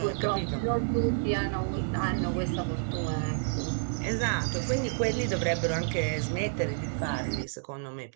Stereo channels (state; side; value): silent; left; digital silence